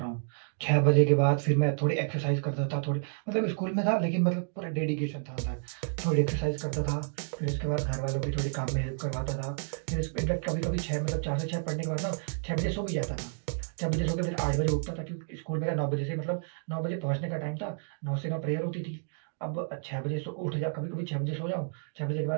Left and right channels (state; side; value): silent; left; digital silence